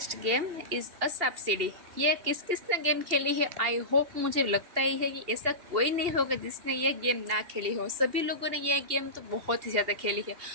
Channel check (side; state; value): left; late; 2.8 ms